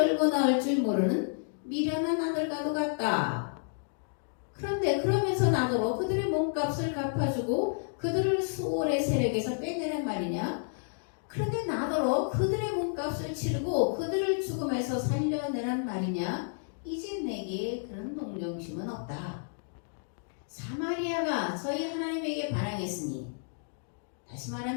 나올 줄 모르는 미련한 아들과도 같다. 그런데 그러면서 나더러 그들의 몸값을 갚아주고 그들을 수월의 세력에서 빼내란 말이냐? 그런데 나더러 그들의 몸값을 치르고 그들을 죽음에서 살려내란 말이냐? 이제 내게 그런 동정심은 없다. 사마리아가 저희 하나님에게 반항했으니, 다시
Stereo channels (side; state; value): right; silent; digital silence